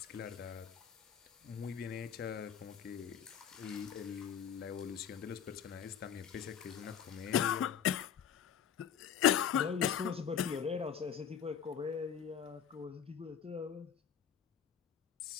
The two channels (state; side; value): quieter; right; 8.3 dB